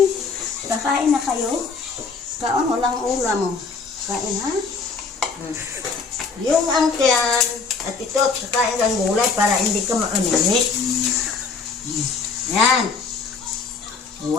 Kakain na kayo? Kaon, walang ulam mo. Kain ha? Yung angkyan at ito, kakain ng gulay para hindi ka maaninit. Yan.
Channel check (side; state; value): right; quieter; 4.7 dB